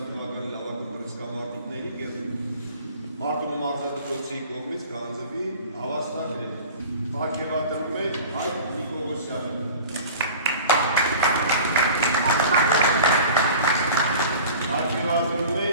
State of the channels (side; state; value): both; inverted; correlation -0.41